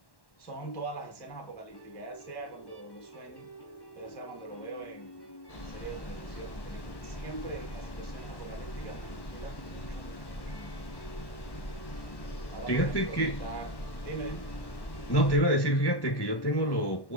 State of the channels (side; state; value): right; late; 1.1 ms